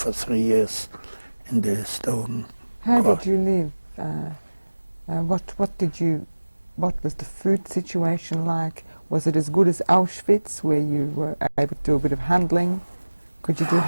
3 years in the stone. How did you live? What was the food situation like? Was it as good as Auschwitz, where you were able to do a bit of handling? Could you do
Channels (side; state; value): both; inverted; correlation -1.00